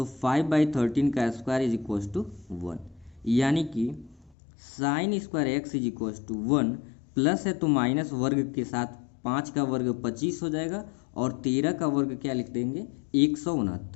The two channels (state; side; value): drops out; right; at 4.3 s